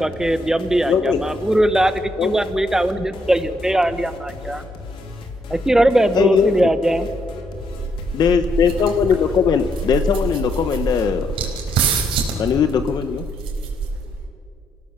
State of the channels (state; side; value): normal; both; correlation 0.75